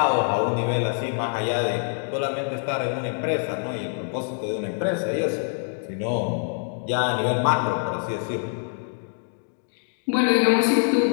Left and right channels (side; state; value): right; silent; 62 dB below the other